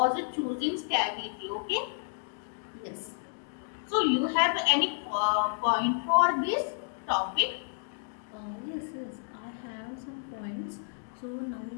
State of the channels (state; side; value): silent; right; digital silence